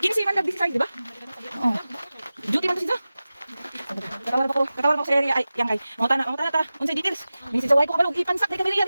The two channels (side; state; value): both; inverted; correlation -0.96